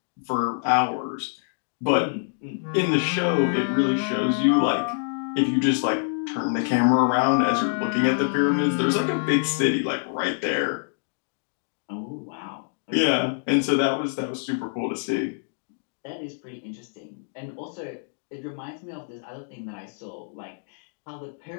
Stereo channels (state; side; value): silent; right; digital silence